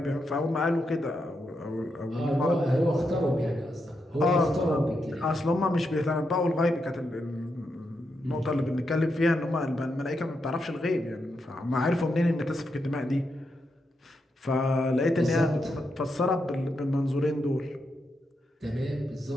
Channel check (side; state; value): both; normal; correlation 0.83